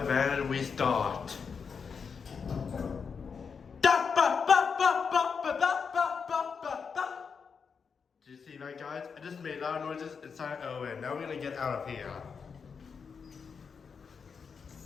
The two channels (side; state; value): right; quieter; 5.9 dB